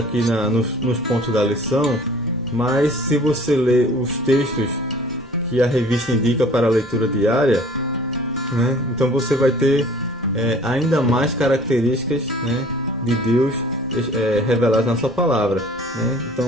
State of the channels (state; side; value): normal; both; correlation 0.49